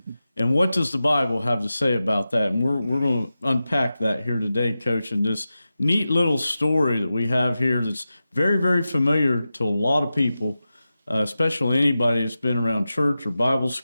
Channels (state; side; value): inverted; both; correlation -0.93